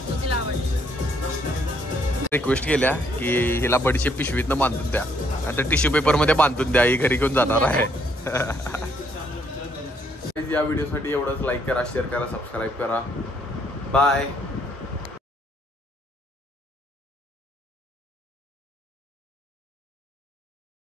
रिक्वेस्ट केल्या की हिला बडीचे पिशवीतनं बांधून द्या, आता टिश्यू पेपर मध्ये बांधून द्या, ही घरी घेऊन जाणार आहे. या व्हिडिओसाठी एवढंच. लाईक करा, शेअर करा, सबस्क्राईब करा. बाय.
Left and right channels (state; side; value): normal; both; correlation 0.69